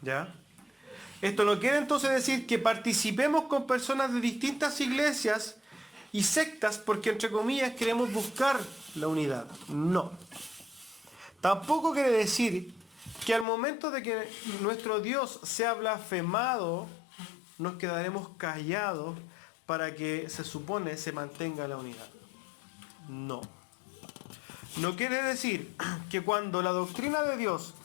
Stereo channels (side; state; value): right; drops out; at 13.5 s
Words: ¿ya? Esto no quiere entonces decir que participemos con personas de distintas iglesias y sectas porque, entre comillas, queremos buscar la unidad. No. Tampoco quiere decir que al momento de que nuestro Dios sea blasfemado, nos quedaremos callados para que se supone se mantenga la unidad. No. No quiere decir que cuando la doctrina de Dios